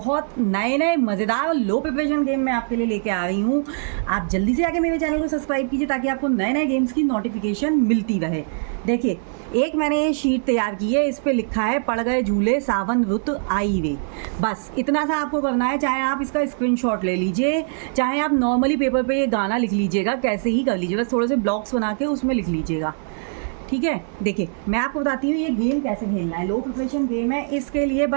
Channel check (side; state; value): left; silent; digital silence